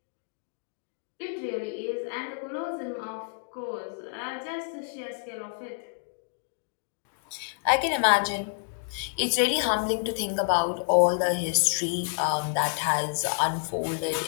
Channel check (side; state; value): right; silent; digital silence